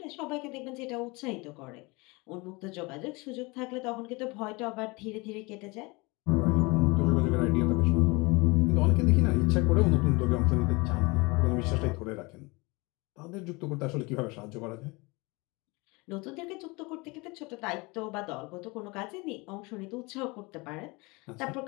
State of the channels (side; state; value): right; quieter; 25.7 dB